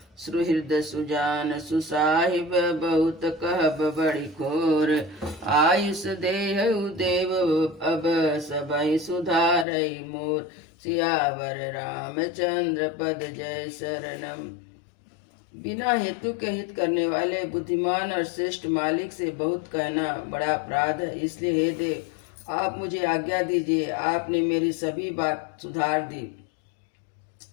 सुहृद सुजान सुसाहिब बहुत कहब बड़ी खोर। आयुष देहु देव अब सबई सुधारई मोर। सियावर रामचंद्र पद जय शरणम। बिना हेतु के हित करने वाले बुद्धिमान और श्रेष्ठ मालिक से बहुत कहना बड़ा अपराध है। इसलिए हे देव, आप मुझे आज्ञा दीजिए। आपने मेरी सभी बात सुधार दी।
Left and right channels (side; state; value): right; drops out; at 9.7 s